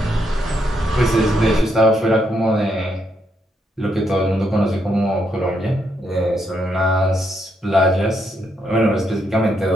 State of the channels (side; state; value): both; normal; correlation 0.78